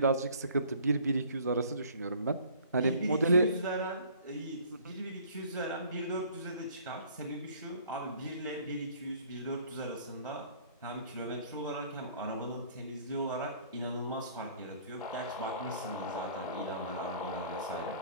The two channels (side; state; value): both; inverted; correlation -0.54